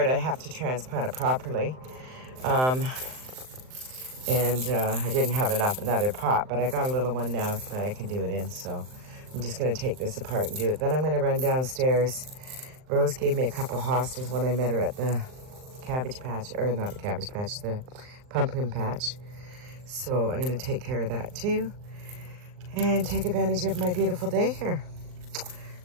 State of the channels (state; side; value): late; left; 39 ms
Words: I have to transplant it properly. I didn't have another pot, but I got a little one now that I can do it in, so I'm just going to take this apart and do it. Then I'm going to run downstairs. Rose gave me a couple hostas when I met her at the cabbage patch, or not the cabbage patch, the pumpkin patch. So I'm going to take care of that too and take advantage of my beautiful day here.